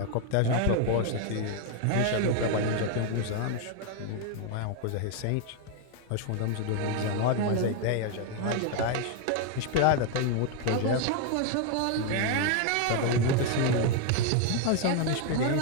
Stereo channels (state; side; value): different; both; correlation 0.01